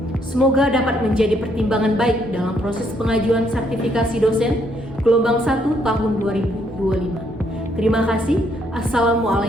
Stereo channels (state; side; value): normal; both; correlation 0.71